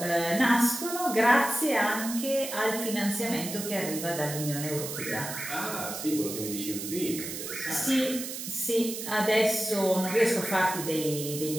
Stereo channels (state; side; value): noise; right; hiss, 7 dB below the sound